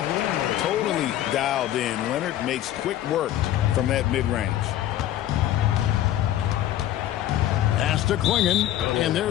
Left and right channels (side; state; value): right; quieter; 12.6 dB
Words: Totally dialed in. Leonard makes quick work from that mid-range. Pass to Klingon, and